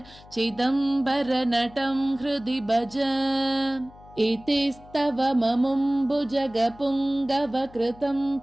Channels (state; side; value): noise; left; hum, 22 dB below the sound